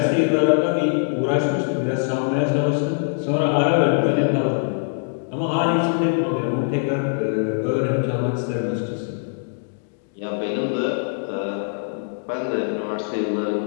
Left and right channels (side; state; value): right; silent; digital silence